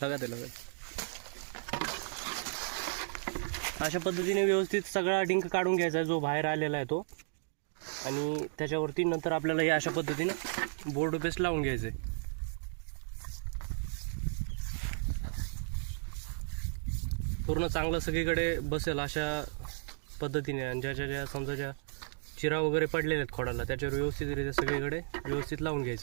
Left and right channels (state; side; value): silent; left; digital silence